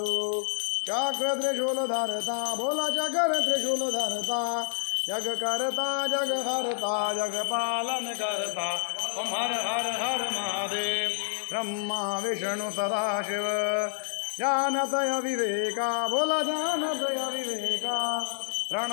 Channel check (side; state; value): right; silent; 59 dB below the other